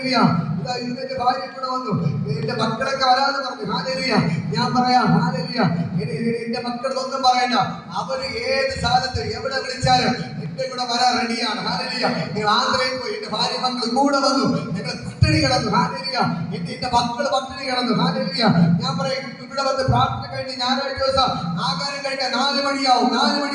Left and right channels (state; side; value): identical; both; correlation 1.00